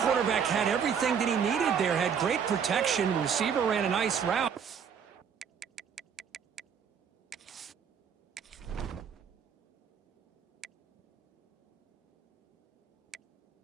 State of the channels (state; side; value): quieter; left; 7.3 dB